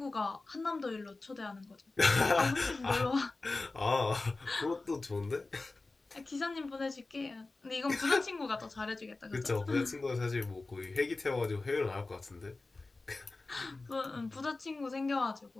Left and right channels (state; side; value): quieter; right; 3.4 dB